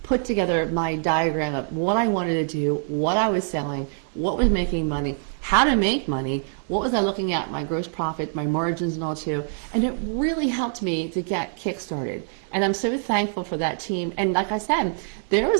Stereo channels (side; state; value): left; silent; 62 dB below the other